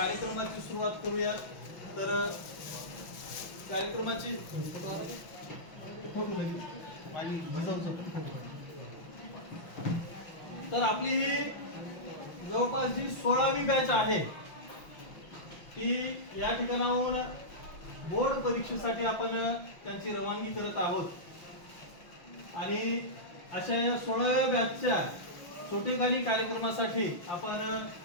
सुरुवात करूया. तर कार्यक्रमाची तर आपली ही जवळपास जी 16वी बॅच आहे ती या ठिकाणाहून बोर्ड परीक्षेसाठी आपण त्यांची रवानगी करत आहोत आणि अशा या 16व्या बॅचच्या छोटेखानी कार्यक्रमासाठी आपण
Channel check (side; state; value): right; late; 6.0 ms